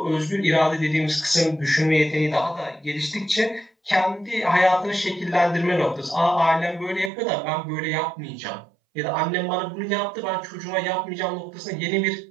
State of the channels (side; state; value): left; drops out; at 7.1 s